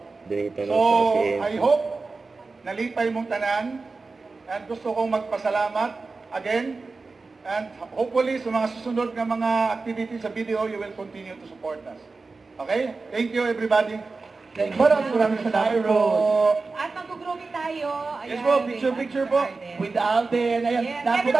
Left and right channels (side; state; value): left; quieter; 4.0 dB